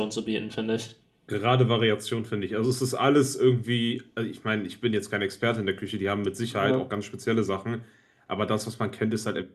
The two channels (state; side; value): identical; both; correlation 1.00